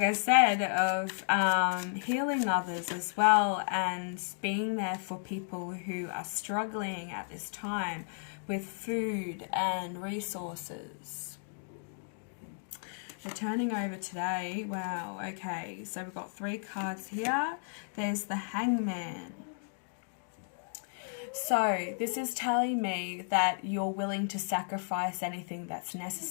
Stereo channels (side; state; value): right; silent; digital silence